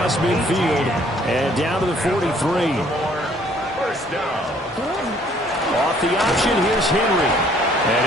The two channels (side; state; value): both; normal; correlation 0.61